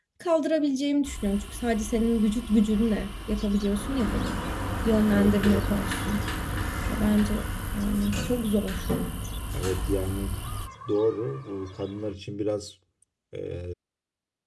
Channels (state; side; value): identical; both; correlation 1.00